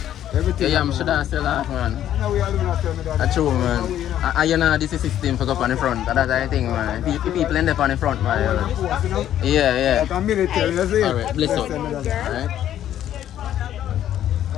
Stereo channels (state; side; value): quieter; right; 11.3 dB